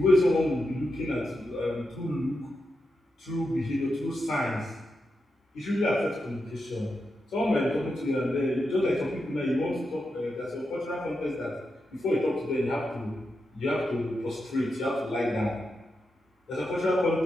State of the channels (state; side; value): normal; both; correlation 0.87